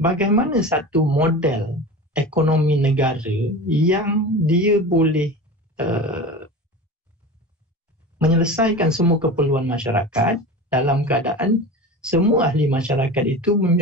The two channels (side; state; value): both; normal; correlation 0.31